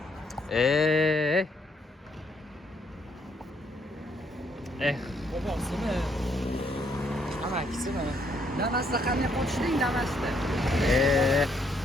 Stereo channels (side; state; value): both; normal; correlation 0.71